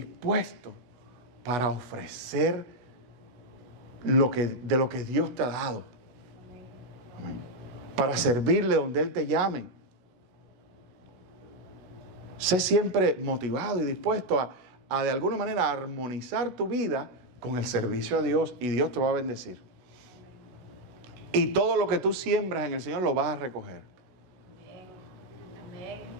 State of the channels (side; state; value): left; late; 16 ms